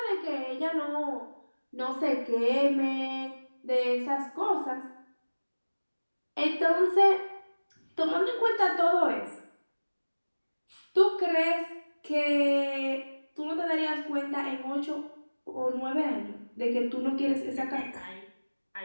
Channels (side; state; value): both; inverted; correlation -1.00